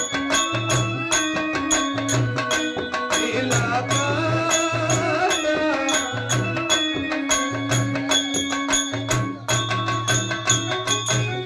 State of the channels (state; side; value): identical; both; correlation 1.00